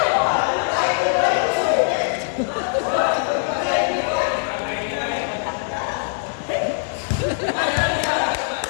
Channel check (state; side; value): silent; right; digital silence